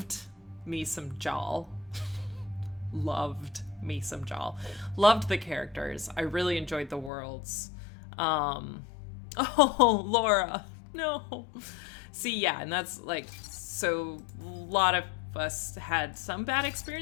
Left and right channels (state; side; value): drops out; right; at 7.1 s